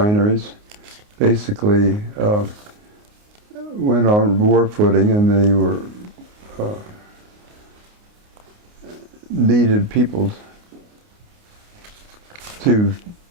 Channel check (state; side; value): late; left; 29 ms